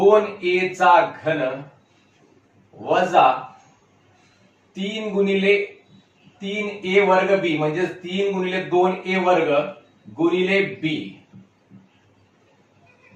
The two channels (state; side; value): identical; both; correlation 1.00